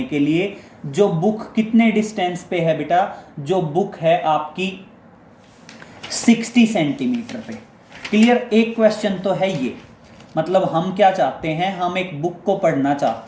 के लिए, जो बुक कितने डिस्टेंस पे है बेटा, जो बुक है आपकी 60 सेंटीमीटर पे। क्लियर, एक क्वेश्चन तो है ये, मतलब हम क्या चाहते हैं, हम एक बुक को पढ़ना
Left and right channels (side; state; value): both; identical; correlation 1.00